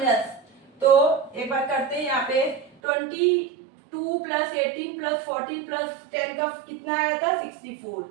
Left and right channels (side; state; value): left; drops out; at 2.7 s